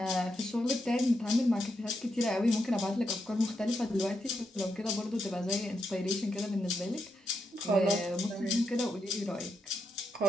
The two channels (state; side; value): normal; both; correlation 0.83